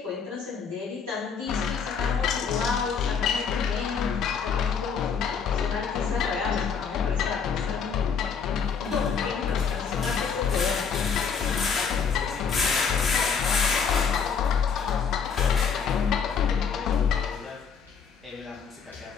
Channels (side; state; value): right; quieter; 6.4 dB